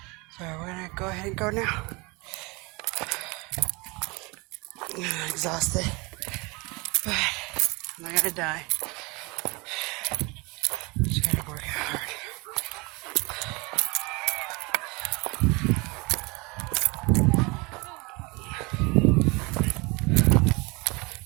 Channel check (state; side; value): quieter; left; 26.8 dB